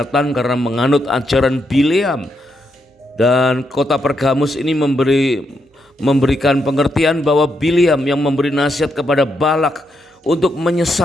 karena menganut ajaran Bileam, dan kota Pergamus ini memberikan pengertian bahwa Bileam yang memberi nasihat kepada Balak untuk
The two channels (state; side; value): normal; both; correlation 0.80